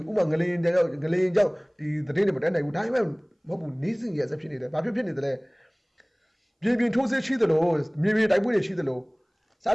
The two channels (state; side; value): identical; both; correlation 1.00